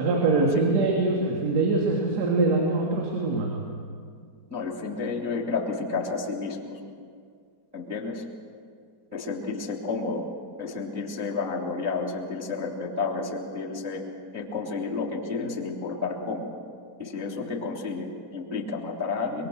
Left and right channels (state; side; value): late; left; 3.8 ms